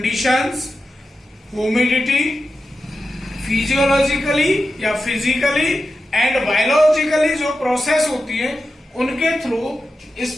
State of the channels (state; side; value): normal; both; correlation 0.91